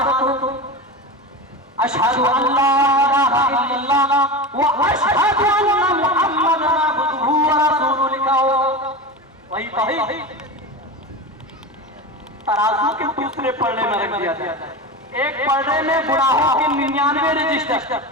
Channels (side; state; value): both; normal; correlation 0.25